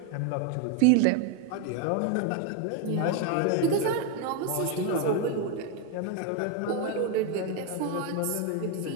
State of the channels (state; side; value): different; both; correlation 0.01